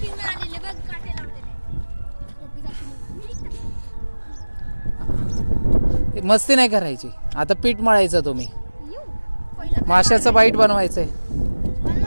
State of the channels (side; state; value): both; inverted; correlation -1.00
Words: मस्ती नाही करायची. आता पीठ मळायचं तुम्ही. माशाचं बाईट बनवायचंय.